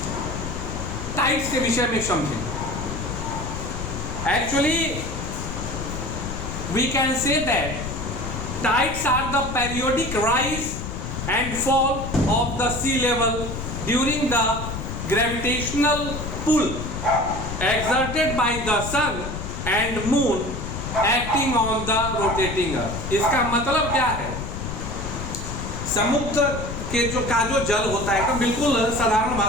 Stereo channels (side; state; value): left; noise; rumble, 6 dB below the sound